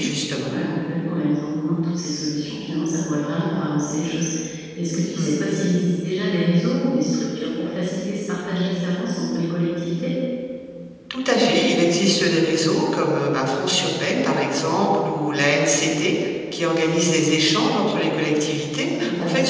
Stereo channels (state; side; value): identical; both; correlation 1.00